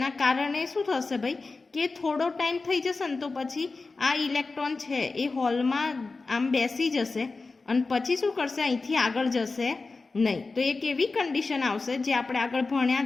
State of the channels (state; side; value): quieter; right; 3.8 dB